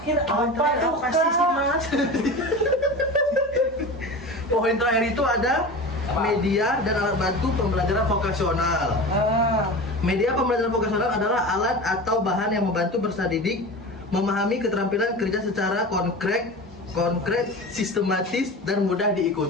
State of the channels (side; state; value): both; normal; correlation 0.31